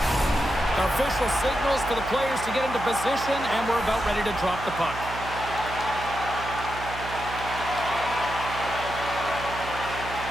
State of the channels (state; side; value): noise; right; hum, 11 dB below the sound